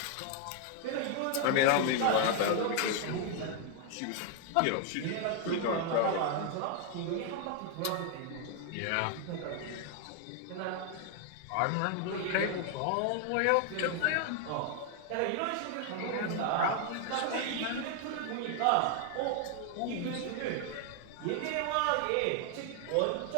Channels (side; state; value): both; different; correlation 0.00